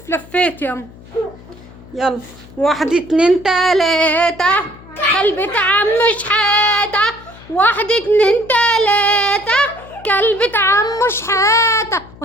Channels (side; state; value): left; noise; hum, 21 dB below the sound